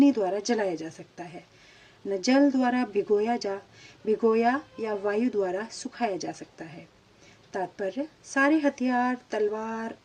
द्वारा जलाया जा सकता है, न जल द्वारा भिगोया या वायु द्वारा सुखाया जा सकता है। तात्पर्य, सारे हथियार, तलवार,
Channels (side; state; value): both; identical; correlation 1.00